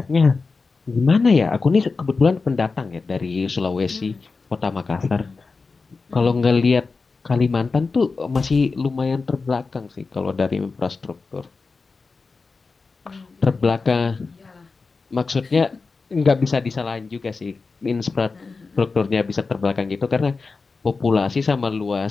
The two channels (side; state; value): right; quieter; 4.3 dB